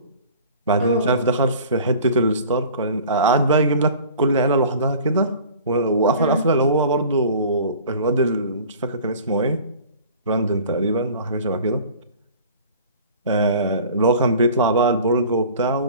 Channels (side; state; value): both; inverted; correlation -0.44